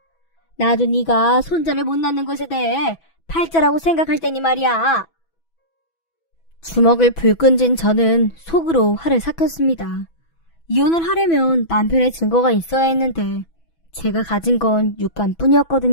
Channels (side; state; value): right; late; 6.1 ms